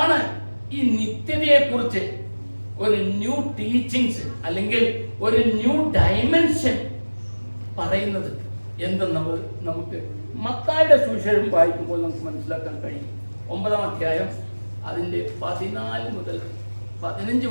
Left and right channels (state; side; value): inverted; both; correlation -1.00